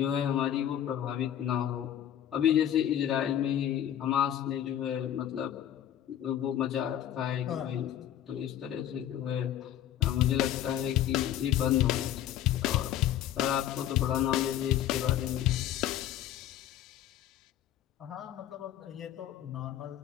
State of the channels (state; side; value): quieter; right; 11.1 dB